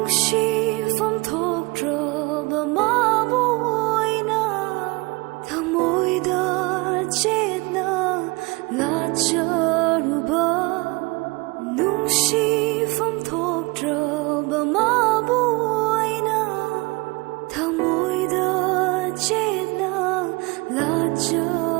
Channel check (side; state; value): left; quieter; 25.9 dB